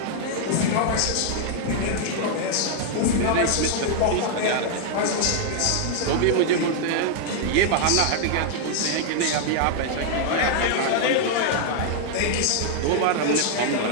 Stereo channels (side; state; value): both; different; correlation 0.00